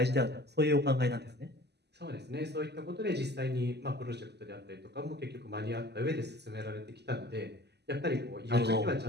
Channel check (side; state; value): left; late; 0.49 ms